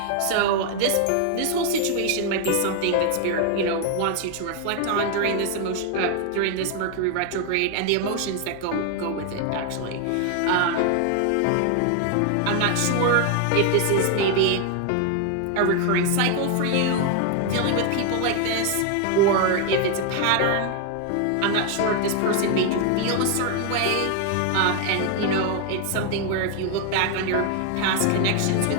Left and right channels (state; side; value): different; both; correlation 0.00